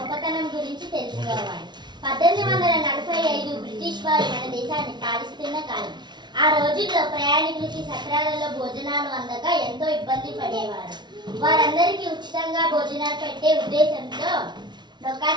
గురించి తెలుసుకోవాలి. 1845 బ్రిటిష్ వారు మన దేశాన్ని పాలిస్తున్న కాలం. ఆ రోజుల్లో ప్రయాణికులకి సత్రాలలో భోజనాలు అందక ఎంతో ఇబ్బంది పడేవారు. వారందరికీ ఉచితంగా భోజనాలు పెట్టే ఉద్దేశంతో డొక్కా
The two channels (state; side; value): late; left; 0.21 ms